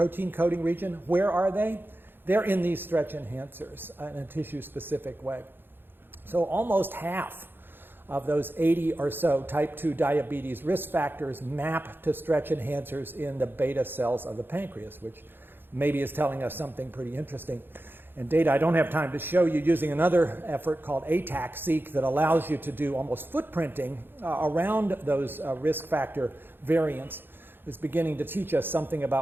coding region, where are they? They're in these stretch enhancers in a tissue-specific way. So almost half of those 80 or so type 2 diabetes risk factors map to stretch enhancers in the beta cells of the pancreas, which maybe is telling us something pretty interesting. And data I don't have time to show you using another effort called Taxicat that allows you to do almost footprinting around those risk factor variants is beginning to teach us something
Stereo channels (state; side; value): late; left; 0.10 ms